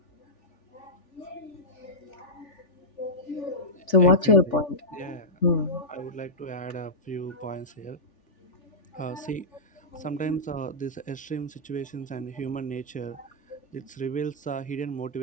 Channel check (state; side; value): normal; both; correlation -0.11